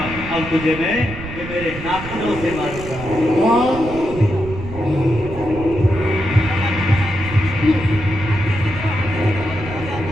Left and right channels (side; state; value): right; noise; rumble, 11 dB below the sound